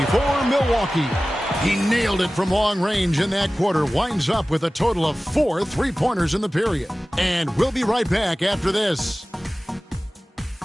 for Milwaukee. He nailed it from long range in that quarter. Winds up with a total of 4 3-pointers in the period. And we'll be right back after this.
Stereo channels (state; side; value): normal; both; correlation 0.97